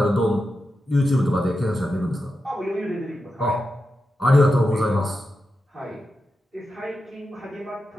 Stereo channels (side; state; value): both; normal; correlation 0.90